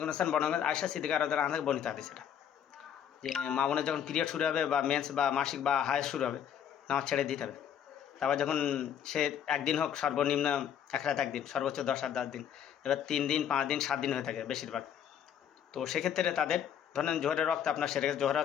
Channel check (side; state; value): right; quieter; 9.1 dB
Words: করিম সাল্লাল্লাহু আলাইহি ওয়াসাল্লাম আয়েশা সিদ্দিকা রাদিয়াল্লাহু আনহা থেকে বর্ণিত হাদিস এটা, যে মা বোনের যখন পিরিয়ড শুরু হবে বা মেন্স বা মাসিক বা হায়েজ শুরু হবে, নামাজ ছেড়ে দিতে হবে। তারপর যখন সে একদিন হোক, সর্বনিম্ন এক রাত একদিন, সর্বোচ্চ 10 আর 10 দিন, এবার 3 দিন 5 দিন 7 দিন হয়ে থাকে বেশিরভাগ। তো সেক্ষেত্রে তাদের ধরেন জোহরের রক্ত আপনার সেরে গেছে, জোহরের